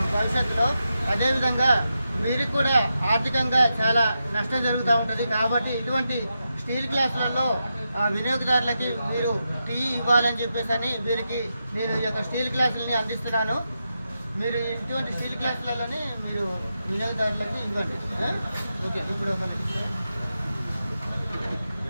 భవిష్యత్తులో. అదేవిధంగా వీరికి కూడా ఆర్థికంగా చాలా నష్టం జరుగుతూ ఉంటుంది. కాబట్టి ఇటువంటి స్టీల్ గ్లాసులలో వినియోగదారులకి మీరు టీ ఇవ్వాలని చెప్పేసి వీరికి నేను ఈ యొక్క స్టీల్ గ్లాసులని అందిస్తున్నాను. మీరు ఇటువంటి స్టీల్ గ్లాసులలోనే మీరు వినియోగదారులకు ఇవ్వండి. ఓకే, ఇప్పుడు ఒక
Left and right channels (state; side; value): inverted; both; correlation -0.87